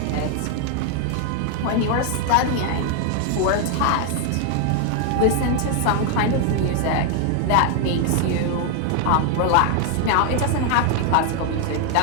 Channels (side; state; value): both; different; correlation 0.00